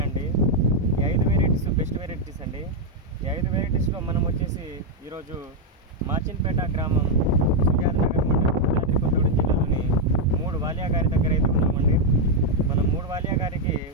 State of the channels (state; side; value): normal; both; correlation 0.00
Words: అండి. ఈ 5 వెరైటీస్ బెస్ట్ వెరైటీస్ అండి. ఈ 5 వెరైటీస్లో మనం వచ్చేసి ఈరోజు మాచిన్పేట గ్రామం, సుజాత నగర్ మండలం, భద్రాద్రి కొత్తగూడెం జిల్లాలోని 3 వాలియా గారి దగ్గర అయితే ఉన్నామండి. మనం 3 వాలియా గారికి